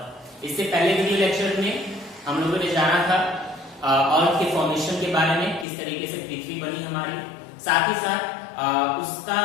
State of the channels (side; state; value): right; drops out; at 5.7 s